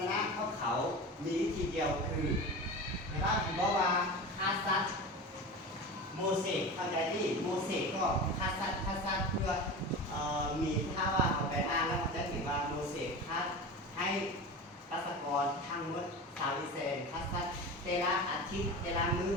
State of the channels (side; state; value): both; normal; correlation 0.29